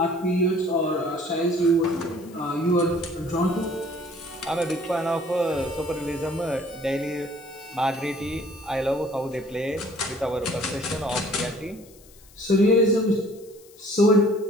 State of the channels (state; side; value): noise; left; hiss, 25 dB below the sound